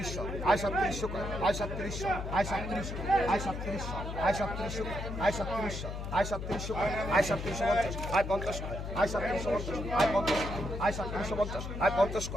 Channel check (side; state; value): left; noise; hum, 6 dB below the sound